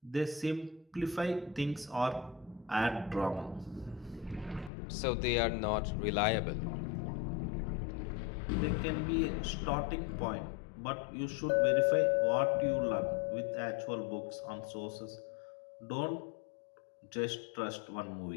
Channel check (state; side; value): drops out; right; at 4.7 s